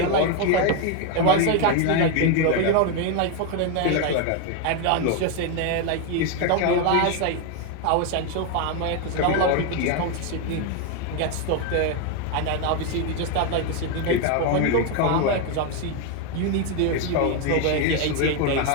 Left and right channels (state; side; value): different; both; correlation 0.01